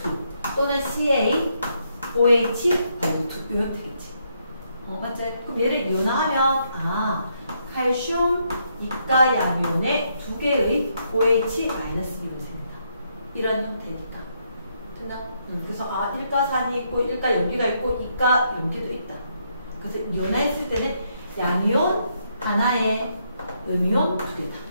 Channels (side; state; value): both; inverted; correlation -0.76